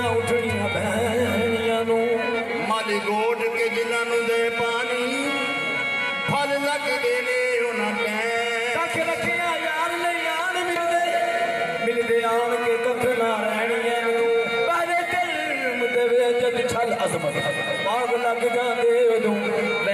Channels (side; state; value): both; identical; correlation 1.00